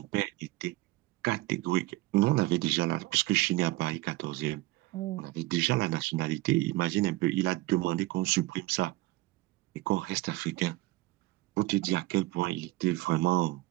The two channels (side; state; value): left; quieter; 19.2 dB